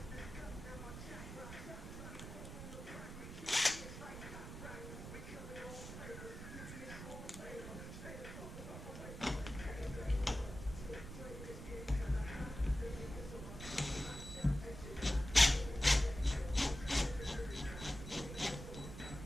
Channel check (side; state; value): right; noise; rumble, 10 dB below the sound